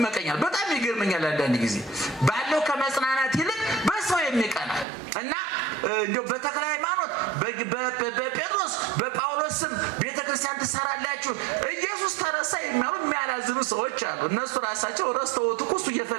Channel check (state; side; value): drops out; left; at 4.9 s